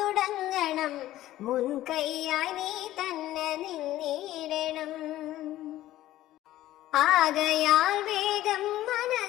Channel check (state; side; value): quieter; right; 14.6 dB